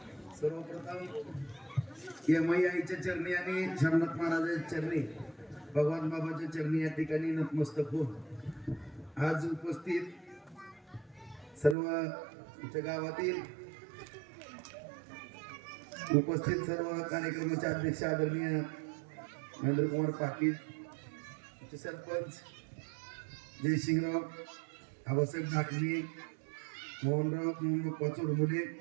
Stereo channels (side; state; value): left; drops out; at 11.8 s